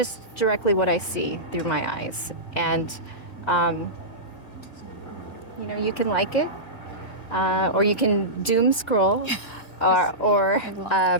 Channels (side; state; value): right; late; 1.9 ms